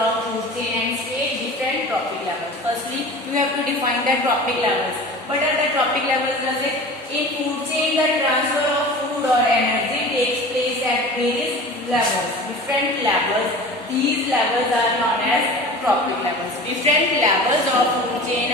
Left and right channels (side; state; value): both; normal; correlation 0.37